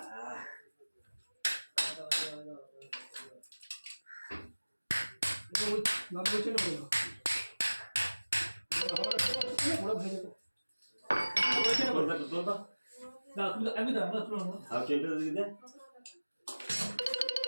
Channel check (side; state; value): both; inverted; correlation -1.00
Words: নাম বলছে না বলো বড় ভেজে বলছে না বলো তো না তুমি আমি দাও না তুমি আর কেটে দিয়ে দে